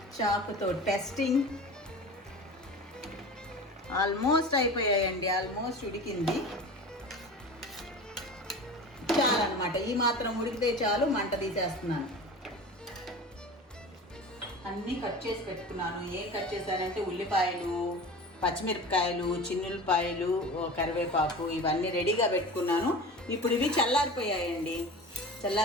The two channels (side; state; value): both; normal; correlation 0.34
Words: చాకుతో టెస్టింగ్. ఆల్మోస్ట్ అయిపోయాయండి, ఆల్మోస్ట్ ఉడికింది. చాలన్నమాట, ఈ మాత్రం ఉడికితే చాలు. మంట తీసేస్తున్నాను. అన్నీ కట్ చేసి పెట్టుకున్నాను. ఏం కట్ చేశానంటే ఉల్లిపాయలు, పచ్చిమిరపకాయలు, చిన్నులపాయలు, కరివేపాకు ఇవన్నీ రెడీగా పెట్టుకున్నాను. ఇప్పుడు ఇవి చల్లారిపోయాయండి.